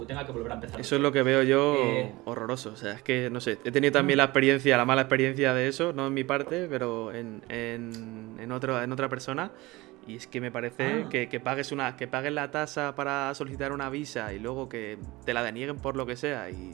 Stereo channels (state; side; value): quieter; left; 21.0 dB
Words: tenga que volver a empezar. Eso es lo que veo yo horroroso. O sea, es que, no sé, he tenido también la mala experiencia de eso, no en mi parte, pero en otra persona. Y es que me parece que pagues la tasa para solicitar una visa y luego que te la denieguen por lo que sea